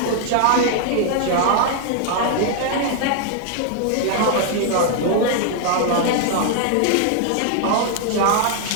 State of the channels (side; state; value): both; different; correlation 0.00